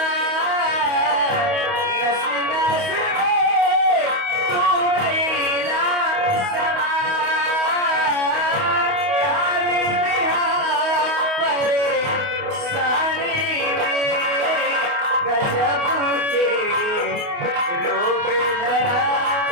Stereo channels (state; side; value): late; left; 28 ms